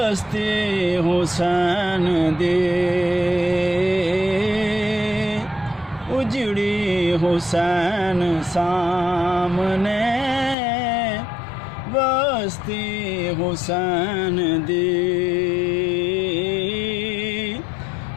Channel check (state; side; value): drops out; right; at 10.6 s